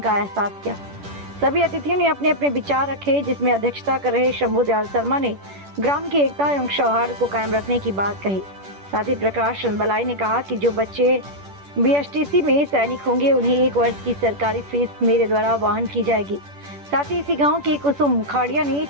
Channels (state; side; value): late; left; 10 ms